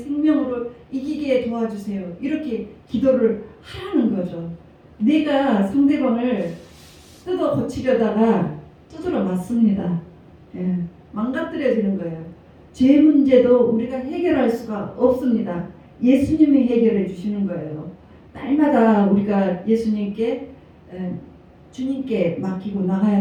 이기게 도와주세요. 이렇게 기도를 하라는 거죠. 내가 상대방을 뜯어 고치려다가 두드러 맞습니다. 예, 망가뜨려지는 거예요. 죄 문제도 우리가 해결할 수가 없습니다. 예수님이 해결해 주시는 거예요. 날마다 우리가 예수님께 주님께 맡기고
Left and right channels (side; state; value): both; identical; correlation 1.00